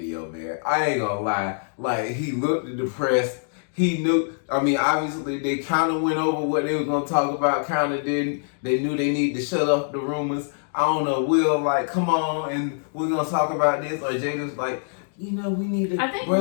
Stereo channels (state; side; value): silent; right; digital silence